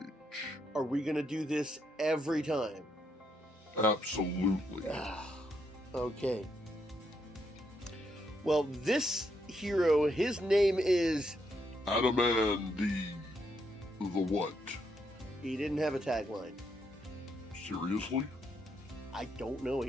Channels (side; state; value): both; normal; correlation 0.77